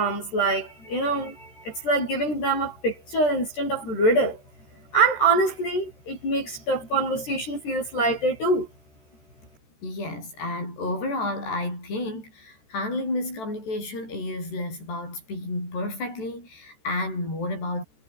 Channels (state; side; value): late; right; 14 ms